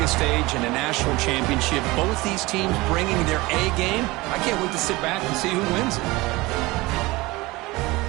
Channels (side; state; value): left; quieter; 21.6 dB